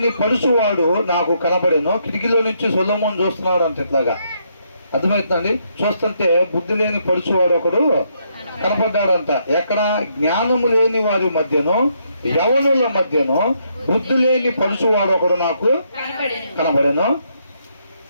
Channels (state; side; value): inverted; both; correlation -0.75